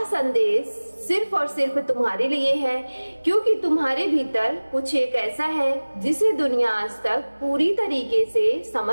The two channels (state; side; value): inverted; both; correlation -1.00